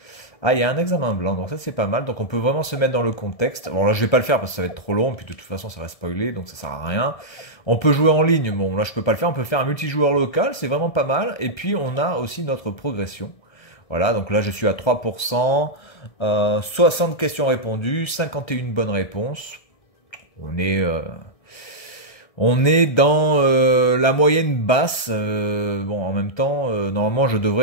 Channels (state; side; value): late; right; 1.7 ms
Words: Ah, il y a un examen blanc, donc ça c'est pas mal. Donc on peut vraiment se mettre dans le contexte. Bon là je vais pas le faire parce que ça va être trop long, puis de toute façon ça va spoiler, donc ça sert à rien. On peut jouer en ligne, bon là je peux pas le faire, on peut faire un multijoueur local, c'est vraiment pas mal. Et puis on a aussi notre progression. Voilà, donc là je suis à 3%, 60 questions répondues, 51 bonnes réponses. On est... On est dans la moyenne basse. Bon, en même temps, normalement, je